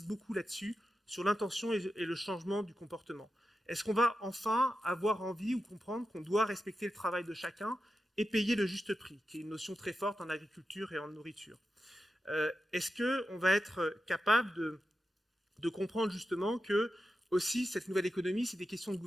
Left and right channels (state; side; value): normal; both; correlation 0.90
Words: beaucoup là-dessus, sur l'intention et le changement du comportement. Est-ce qu'on va enfin avoir envie ou comprendre qu'on doit respecter le travail de chacun et payer le juste prix, qui est une notion très forte en agriculture et en nourriture? Est-ce qu'on va être capable de de comprendre justement que aussi cette nouvelle économie, c'est des questions de